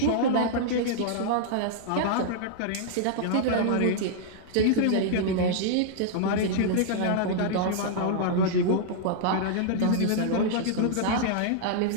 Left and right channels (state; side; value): different; both; correlation -0.01